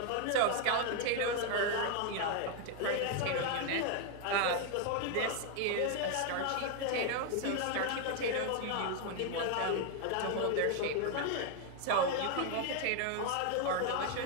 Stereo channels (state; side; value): different; both; correlation 0.01